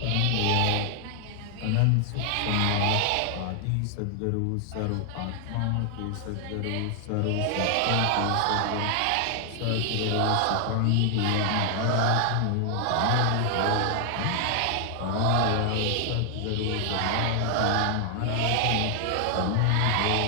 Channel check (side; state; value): both; different; correlation 0.00